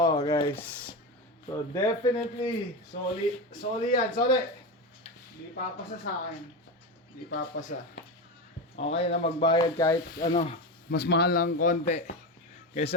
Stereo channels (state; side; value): normal; both; correlation 0.18